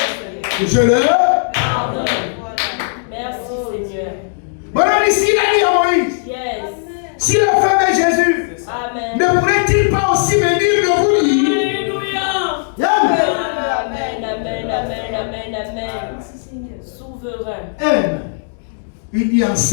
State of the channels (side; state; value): right; silent; digital silence